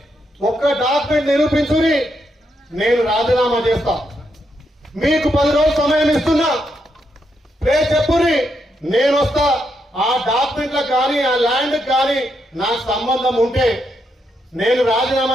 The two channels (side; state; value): both; normal; correlation 0.80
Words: ఒక్క డాక్యుమెంట్ నిరూపించుని, నేను రాజీనామా చేస్తా. మీకు 10 రోజులు సమయం ఇస్తున్నా, చెప్పుని, నేను వస్తా. ఆ డాక్యుమెంట్లకు కానీ ఆ ల్యాండ్ కానీ నాకు సంబంధం ఉంటే నేను